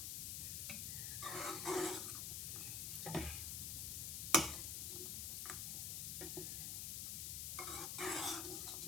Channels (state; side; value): noise; left; hiss, 1 dB below the sound